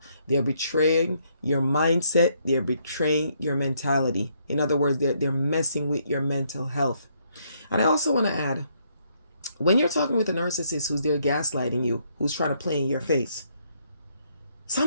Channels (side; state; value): both; inverted; correlation -0.72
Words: They're betraying your mindset. They're betraying your mentality. In other words, they're messing with your mental health. And I also want to add, when you're talking with a narcissist who's there gaslighting you, who's trying to play in your face,